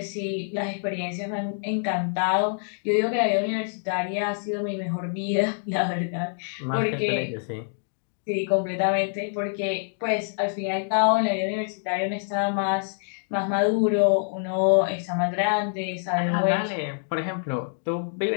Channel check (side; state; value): right; silent; digital silence